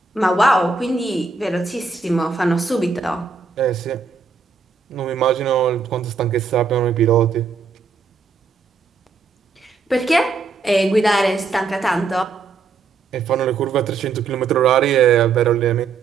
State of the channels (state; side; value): quieter; left; 4.8 dB